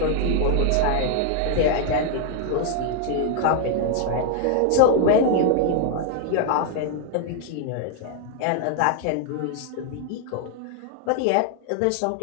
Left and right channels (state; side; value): different; both; correlation 0.00